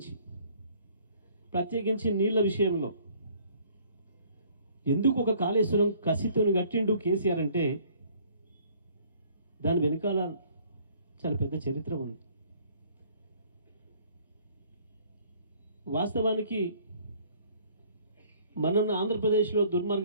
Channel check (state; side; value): inverted; both; correlation -0.58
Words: ప్రత్యేకించి నీళ్ల విషయంలో ఎందుకు ఒక కాళేశ్వరం కసితోని కట్టిండు కేసీఆర్ అంటే దాని వెనుకాల చాలా పెద్ద చరిత్ర ఉంది. వాస్తవానికి మనం ఆంధ్రప్రదేశ్లో